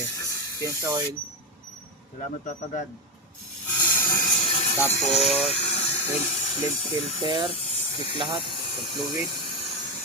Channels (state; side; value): normal; both; correlation 0.10